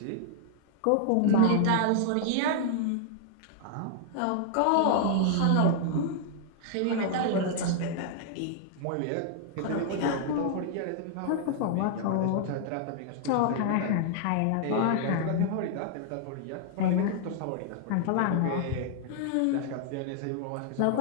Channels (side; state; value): both; different; correlation 0.00